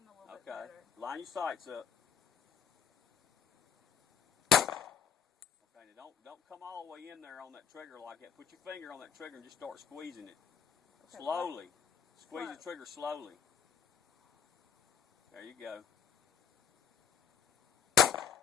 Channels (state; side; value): quieter; right; 7.2 dB